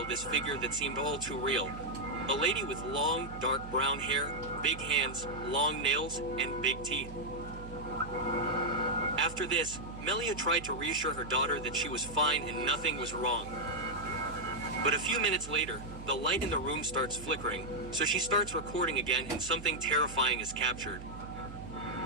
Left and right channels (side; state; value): right; noise; hum, 13 dB below the sound